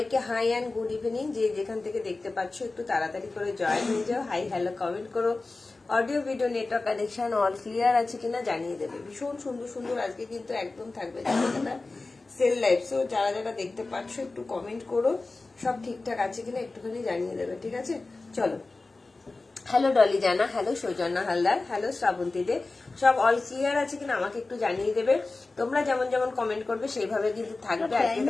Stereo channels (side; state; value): right; quieter; 3.4 dB